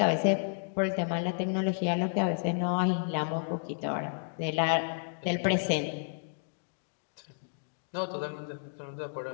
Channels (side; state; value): right; silent; digital silence